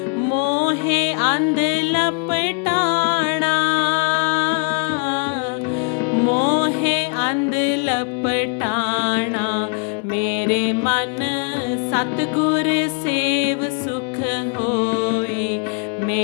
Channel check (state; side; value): quieter; right; 39.4 dB